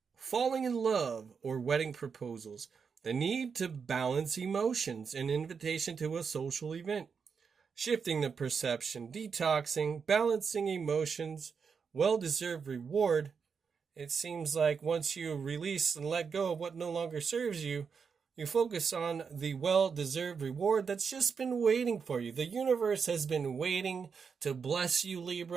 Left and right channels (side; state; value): left; quieter; 6.0 dB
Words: falling in love, or wedding proposals. The need to balance emotions, an invitation to a social event. Shifting the perception, detoxing, balancing emotions, well-deserved reward. It seems like once you release and let go of what no longer serves you, you focus on the well-deserved reward that's just been waiting for you. The universe has been waiting to bless you,